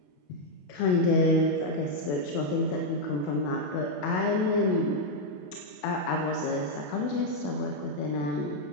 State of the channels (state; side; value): late; right; 28 ms